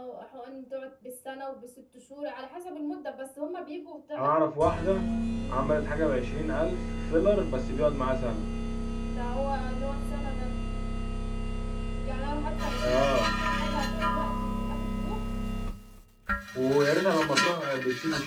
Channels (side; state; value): both; identical; correlation 1.00